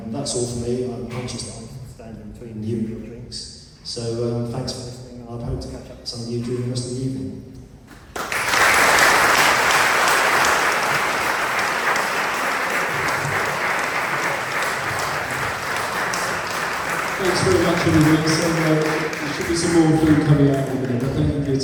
that's all for me. I'm conscious that I'm standing between you and your drinks. So thanks for listening, and I hope to catch up with some of you during the rest of the evening. Thanks very much, everybody. So there should be some more food coming out in a minute, but thank you for your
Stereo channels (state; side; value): identical; both; correlation 1.00